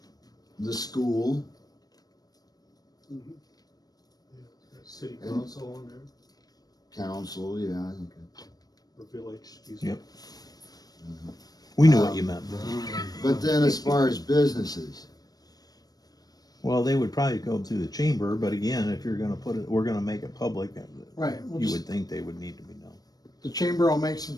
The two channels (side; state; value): right; late; 0.19 ms